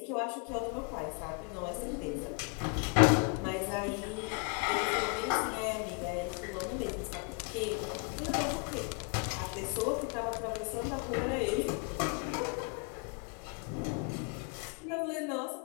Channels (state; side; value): quieter; right; 35.3 dB